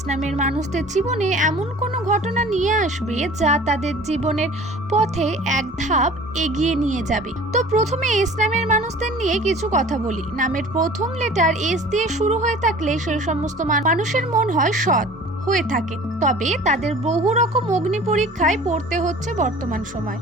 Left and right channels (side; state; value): both; normal; correlation 0.45